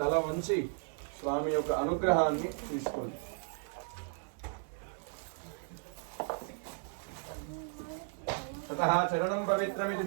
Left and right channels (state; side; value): silent; left; 54 dB below the other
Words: తల వంచి స్వామి యొక్క అనుగ్రహాన్ని తీసుకోండి. ततः चरणं पवित्रमिति